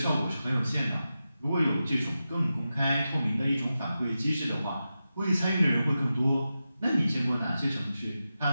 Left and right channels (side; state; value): both; inverted; correlation -0.91